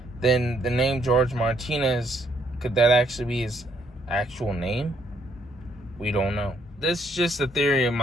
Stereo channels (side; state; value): both; normal; correlation 0.70